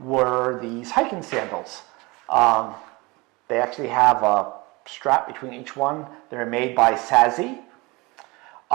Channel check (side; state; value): left; quieter; 24.5 dB